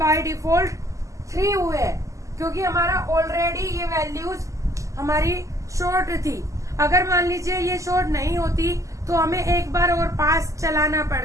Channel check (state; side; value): late; left; 0.16 ms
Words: डिफॉल्ट 3 हुए हैं, क्योंकि हमारा ऑलरेडी ये वैल्यूज हमारी शॉर्ट थी। अगर मान लीजिए ये शॉर्ट नहीं होती तो हमें एक बार और पास चलाना